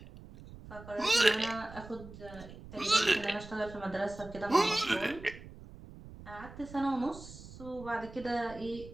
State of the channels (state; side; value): noise; right; rumble, 16 dB below the sound